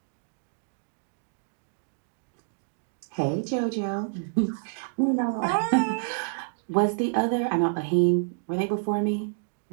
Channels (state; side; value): silent; left; digital silence